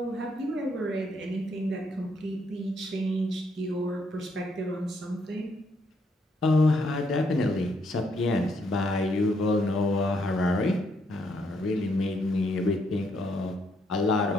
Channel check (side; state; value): both; normal; correlation 0.73